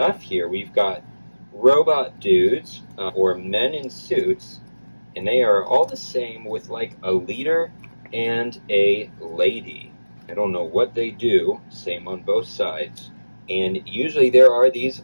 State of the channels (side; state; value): both; inverted; correlation -1.00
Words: here. We've got robot dudes, or men in suits, and they are all the same with like a leader and a lady. I don't know what they do, same on both sides. And usually there are these